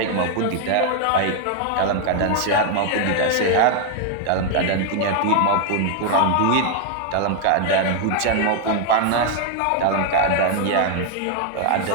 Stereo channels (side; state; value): both; different; correlation 0.01